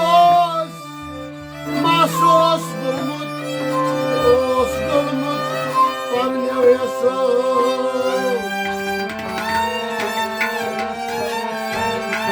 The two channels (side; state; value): both; identical; correlation 1.00